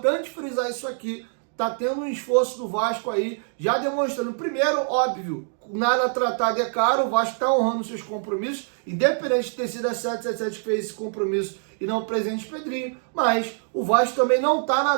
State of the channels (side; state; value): left; silent; 60 dB below the other